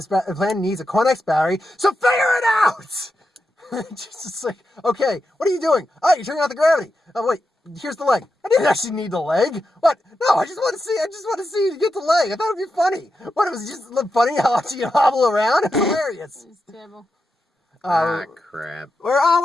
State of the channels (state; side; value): normal; both; correlation 0.88